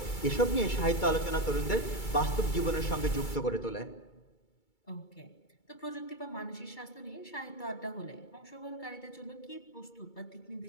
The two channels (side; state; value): right; late; 2.3 ms